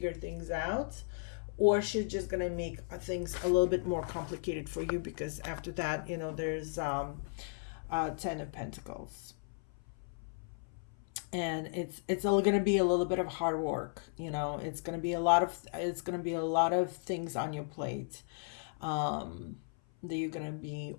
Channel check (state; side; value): silent; right; 54 dB below the other